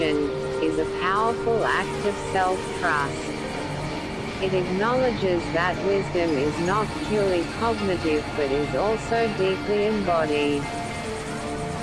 is a powerful act of self-trust. It acknowledges that wisdom is not purely cognitive but is also deeply embodied.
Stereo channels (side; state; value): both; identical; correlation 1.00